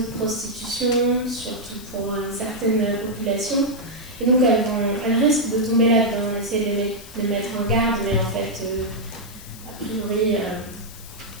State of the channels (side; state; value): left; noise; hiss, 17 dB below the sound